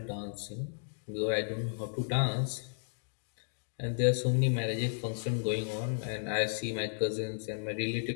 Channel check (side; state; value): right; silent; digital silence